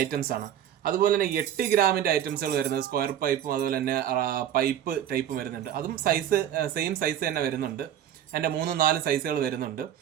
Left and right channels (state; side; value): quieter; left; 10.5 dB